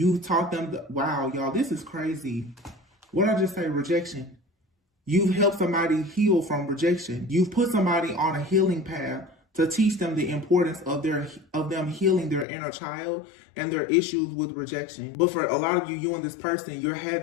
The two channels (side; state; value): right; drops out; at 12.5 s